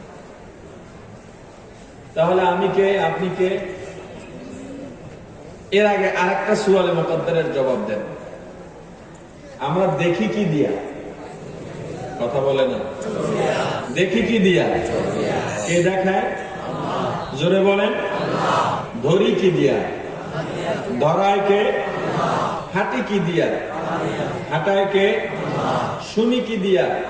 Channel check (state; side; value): identical; both; correlation 1.00